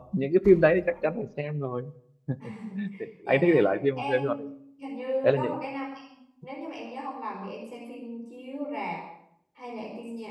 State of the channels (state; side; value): identical; both; correlation 1.00